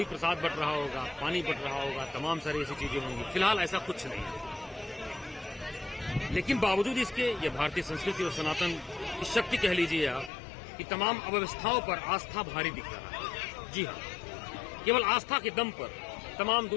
प्रसाद बट रहा होगा, पानी बट रहा होगा, तमाम सारी ऐसी चीजें होंगी। फिलहाल ऐसा कुछ नहीं है, लेकिन बावजूद इसके ये भारतीय संस्कृति और सनातन की शक्ति कह लीजिए आप कि तमाम अव्यवस्थाओं पर आस्था भारी दिख रहा है। जी हाँ, केवल आस्था के दम पर तमाम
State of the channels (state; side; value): drops out; right; at 10.3 s